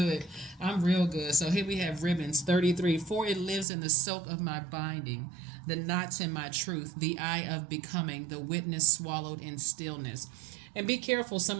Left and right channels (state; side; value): drops out; left; at 3.7 s